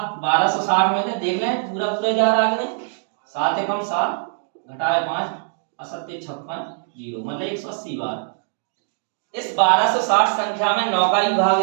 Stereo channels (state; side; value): silent; left; digital silence